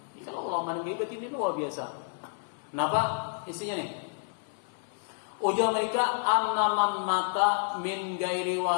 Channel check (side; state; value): right; silent; digital silence